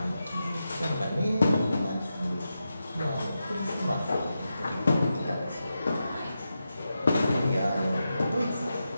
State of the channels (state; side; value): inverted; both; correlation -0.89